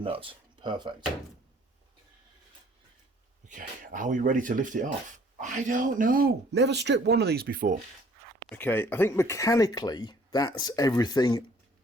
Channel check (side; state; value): both; normal; correlation 0.57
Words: Perfect. Okay, are we ready to lift it off? I don't know. Never stripped one of these before. Okay, I think mechanically that's everything